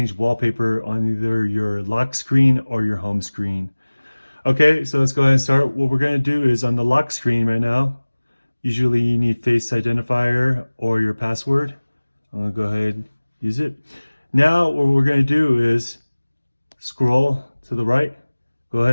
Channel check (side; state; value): both; inverted; correlation -1.00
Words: wallpaper on either your lock screen or your home screen. Okay, so let's go ahead and start. What we're going to do is on the lock screen right now, usually you need face identifier or your password. I'm going to go ahead and use it. Now what we're going to do is scroll to the right, go